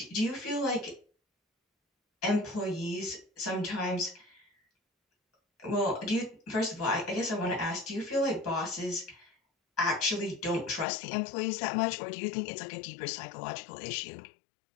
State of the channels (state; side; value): drops out; right; at 10.9 s